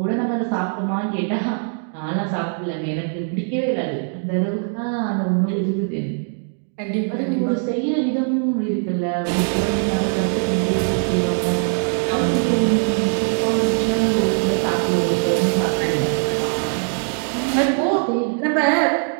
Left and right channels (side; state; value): left; silent; 58 dB below the other